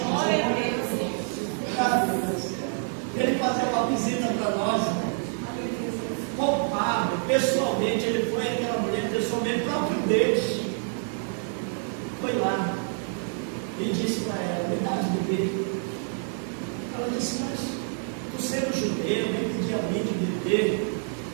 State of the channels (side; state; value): left; silent; 60 dB below the other